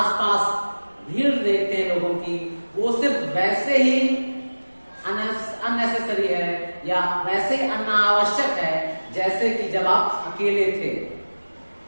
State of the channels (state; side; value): inverted; both; correlation -1.00